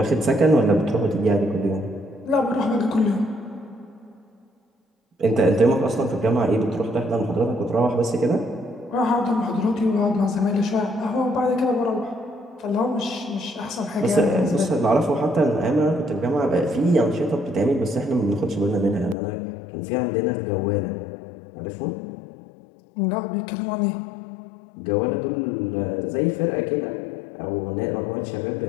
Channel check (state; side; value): drops out; right; at 19.2 s